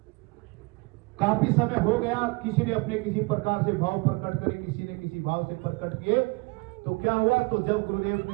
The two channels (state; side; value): quieter; left; 27.1 dB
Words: काफी समय हो गया, किसी ने अपने किसी प्रकार से भाव प्रकट करे, किसी ने किसी भाव से प्रकट किए। तो क्या हुआ? तो जब गुरुदेव